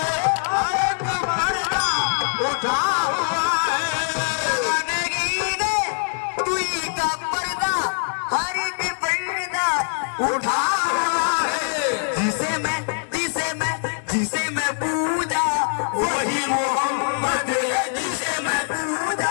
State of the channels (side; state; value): right; silent; 60 dB below the other